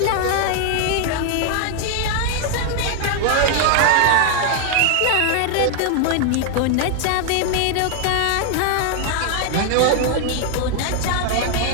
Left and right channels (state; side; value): different; both; correlation 0.00